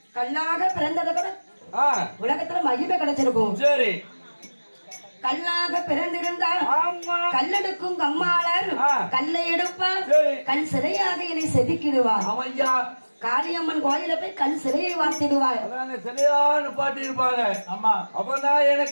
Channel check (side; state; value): both; inverted; correlation -1.00